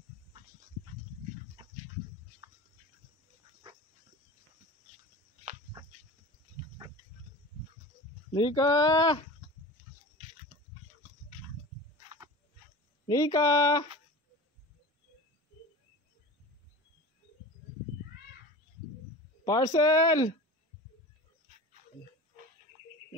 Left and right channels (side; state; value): both; normal; correlation 0.34